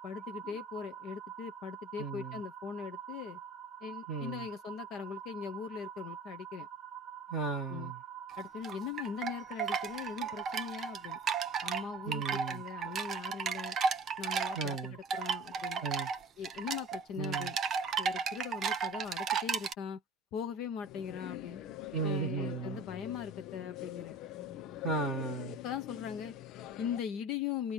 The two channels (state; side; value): normal; both; correlation 0.42